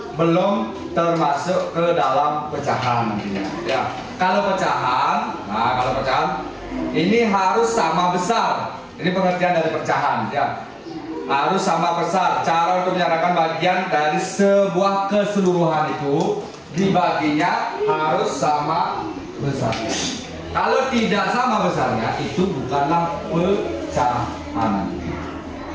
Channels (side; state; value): both; identical; correlation 1.00